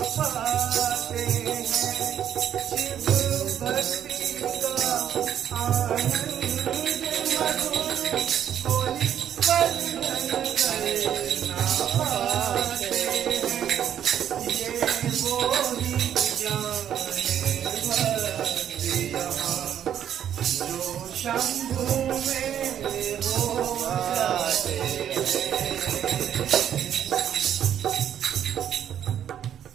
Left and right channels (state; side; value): quieter; left; 9.8 dB